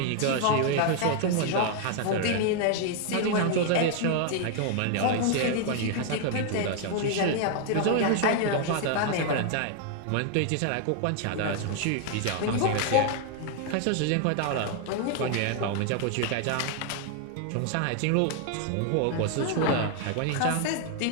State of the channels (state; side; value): different; both; correlation 0.00